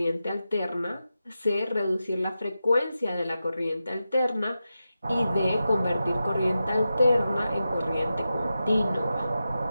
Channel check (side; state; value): both; inverted; correlation -0.91